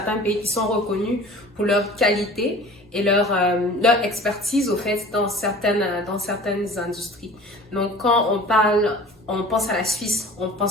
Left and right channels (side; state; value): both; normal; correlation 0.43